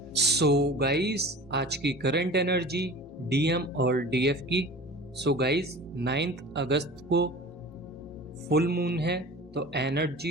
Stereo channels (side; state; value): both; normal; correlation 0.38